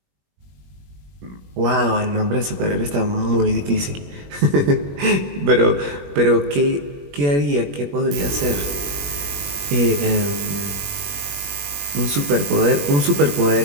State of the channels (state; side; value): late; left; 21 ms